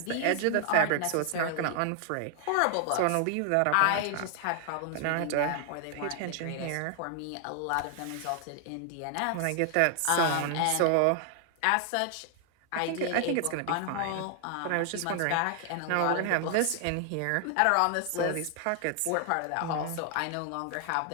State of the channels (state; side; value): different; both; correlation 0.00